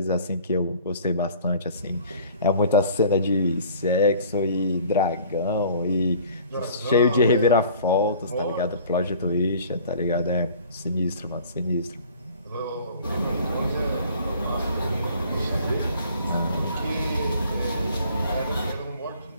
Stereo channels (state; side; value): inverted; both; correlation -0.50